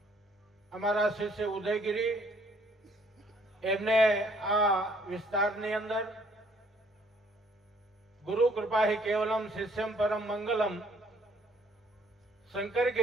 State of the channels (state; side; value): normal; both; correlation 0.63